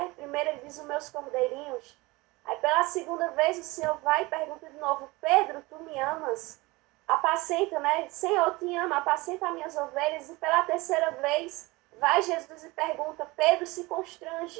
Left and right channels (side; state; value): left; quieter; 22.7 dB